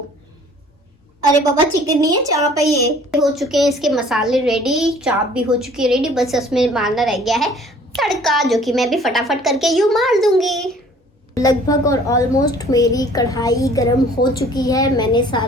अरे बाबा चिकन नहीं है, चाप है। ये हो चुके हैं इसके मसाले रेडी, चाप भी हो चुकी है रेडी, बस इसमें मारना रह गया है तड़का, जो कि मैं भी फटाफट करके यूं मार दूंगी। लगभग और ऑलमोस्ट मेरी कढ़ाई गरम हो चुकी है। मैंने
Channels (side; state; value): both; normal; correlation 0.53